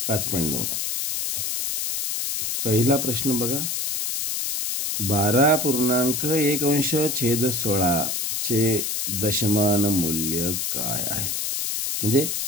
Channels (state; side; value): noise; left; hiss, 1 dB below the sound